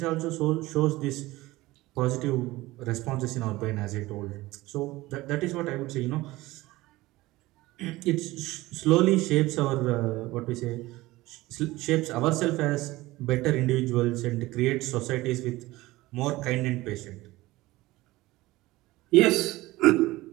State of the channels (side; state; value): left; quieter; 18.9 dB